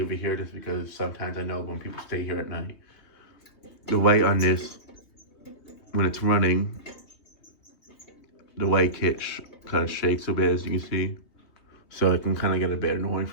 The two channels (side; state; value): right; late; 3.3 ms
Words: it here just because sometimes I know when people stay here at night, the light on this, when it's running, the light kit kind of shakes a bit, as you can see. So it can kind of get a bit annoying